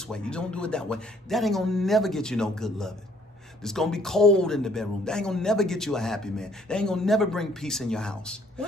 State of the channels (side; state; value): both; normal; correlation 0.62